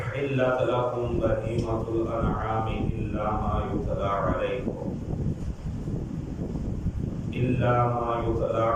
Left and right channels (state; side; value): identical; both; correlation 1.00